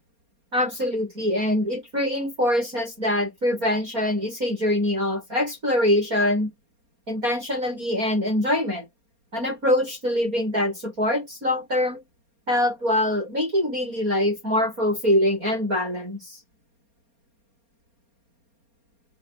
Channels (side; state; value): left; late; 4.3 ms